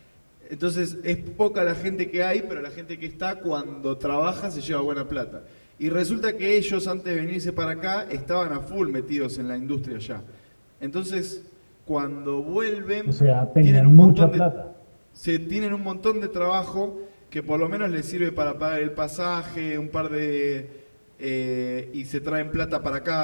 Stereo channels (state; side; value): inverted; both; correlation -1.00